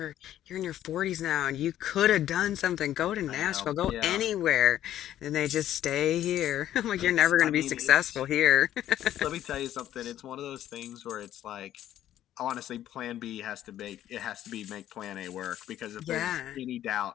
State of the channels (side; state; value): right; quieter; 12.1 dB